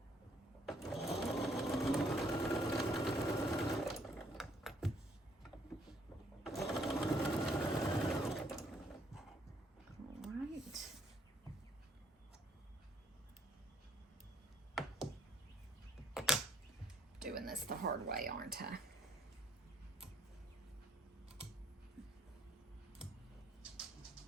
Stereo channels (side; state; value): both; normal; correlation 0.66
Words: All right. Doing this the hard way, aren't I?